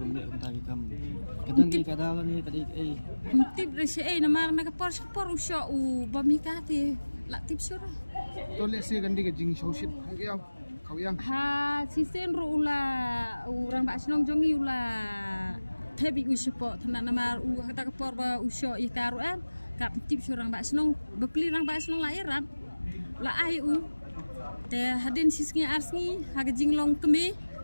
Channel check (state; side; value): inverted; both; correlation -1.00